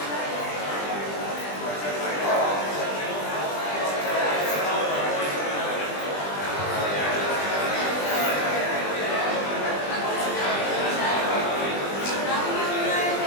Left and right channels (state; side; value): late; right; 20 ms